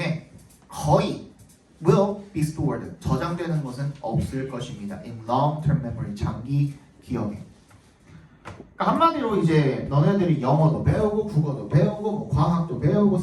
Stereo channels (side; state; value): both; identical; correlation 1.00